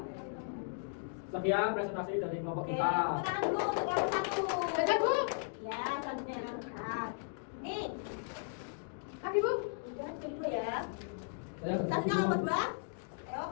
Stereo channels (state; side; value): silent; right; digital silence